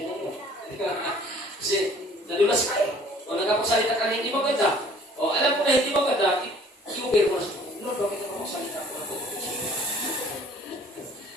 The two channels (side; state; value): both; normal; correlation 0.54